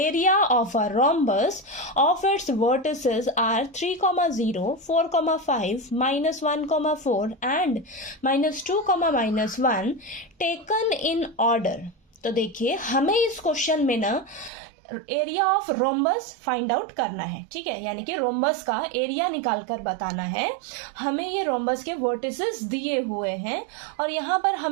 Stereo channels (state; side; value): drops out; left; at 14.5 s